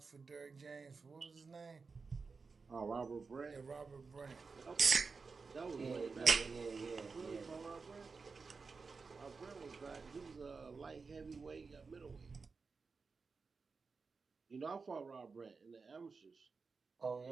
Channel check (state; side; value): quieter; left; 4.7 dB